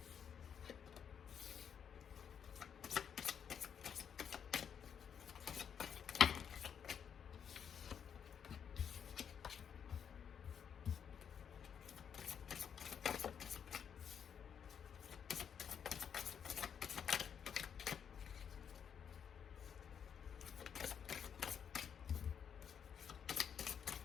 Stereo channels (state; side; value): quieter; right; 7.8 dB